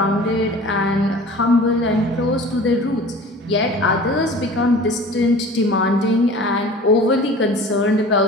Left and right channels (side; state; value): both; normal; correlation 0.42